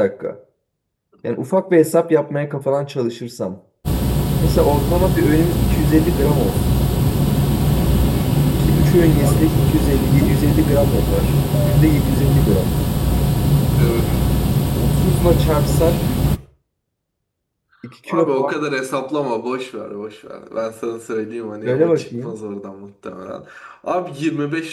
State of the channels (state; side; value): identical; both; correlation 1.00